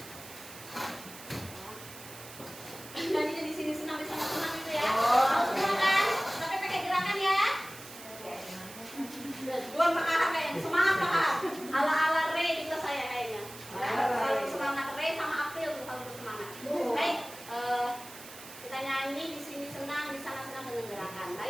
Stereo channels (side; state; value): right; noise; hiss, 15 dB below the sound